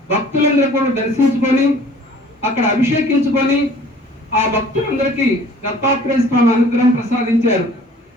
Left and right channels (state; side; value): normal; both; correlation 0.51